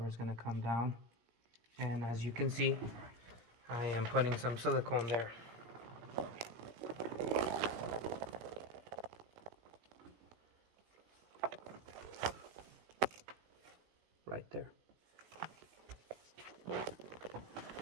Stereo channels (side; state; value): left; late; 17 ms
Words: is gonna come down. And as you can see, I am putting some silicone there. Right there.